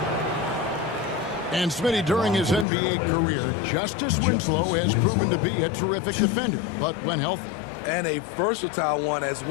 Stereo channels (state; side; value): drops out; right; at 2.7 s